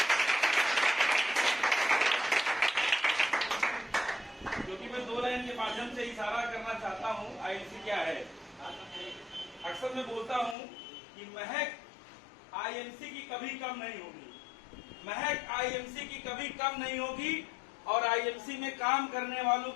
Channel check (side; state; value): right; drops out; at 10.6 s